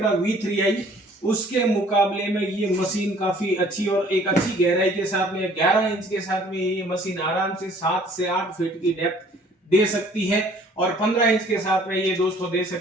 V3i, उसके मुकाबले में ये मशीन काफी अच्छी और एक अच्छी गहराई के साथ में 11 इंच के साथ में ये मशीन आराम से 7 से 8 फीट की डेप्थ दे सकती है। और 15 इंच के साथ में ये दोस्तों दे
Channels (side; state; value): both; normal; correlation 0.55